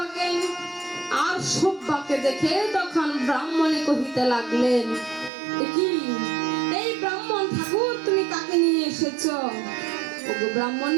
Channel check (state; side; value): drops out; left; at 5.3 s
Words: আর সব্বাকে দেখে তখন ব্রাহ্মণে কহিতে লাগলেন, এ কি এই ব্রাহ্মণ ঠাকুর তুমি কাকে নিয়ে এসেছো? ওগো